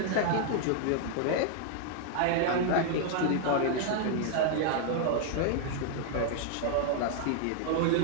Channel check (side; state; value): both; different; correlation 0.00